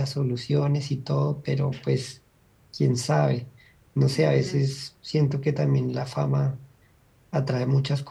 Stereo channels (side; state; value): both; identical; correlation 1.00